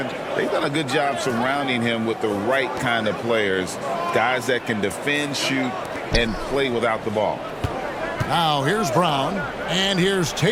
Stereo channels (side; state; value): both; identical; correlation 1.00